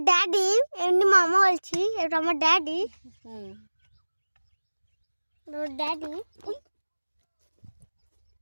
ড্যাডি, এমনি মামা বলছি, এটা আমার ড্যাডি। ড্যাডি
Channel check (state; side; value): inverted; both; correlation -1.00